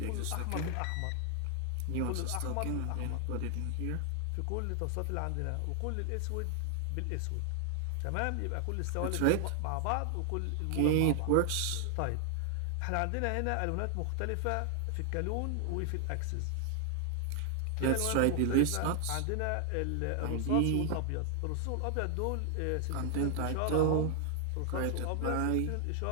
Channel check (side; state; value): both; different; correlation 0.00